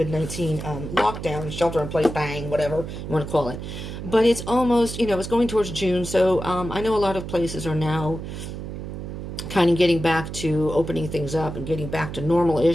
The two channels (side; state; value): right; noise; hum, 8 dB below the sound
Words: lockdown, shelter in place, bang, whatever you want to call it. But it's almost, it's going towards June, so I know a lot of places are now kind of getting back to opening things up and getting back to